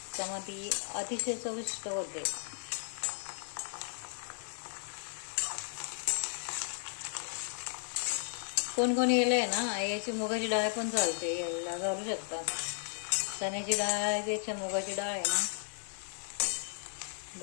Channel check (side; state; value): right; silent; 54 dB below the other